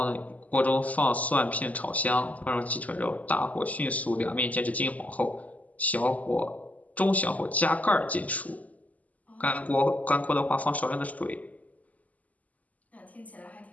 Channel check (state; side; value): late; right; 0.074 ms